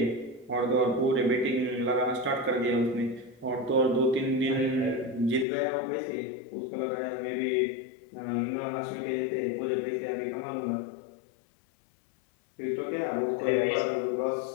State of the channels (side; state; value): right; drops out; at 5.5 s